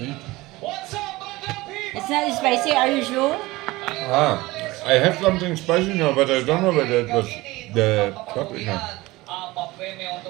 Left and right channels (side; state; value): left; quieter; 20.2 dB